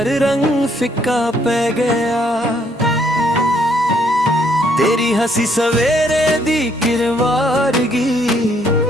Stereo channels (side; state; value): both; normal; correlation 0.69